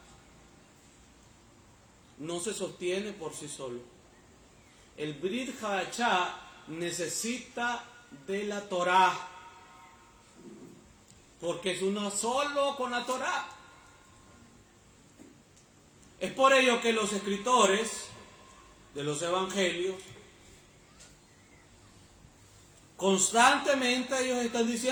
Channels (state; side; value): identical; both; correlation 1.00